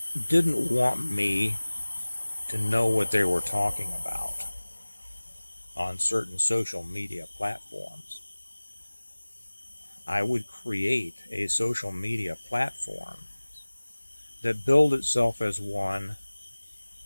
didn't want me to know what they were talking about on certain social media platforms, I would create a social media platform that billed itself as one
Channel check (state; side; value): inverted; both; correlation -1.00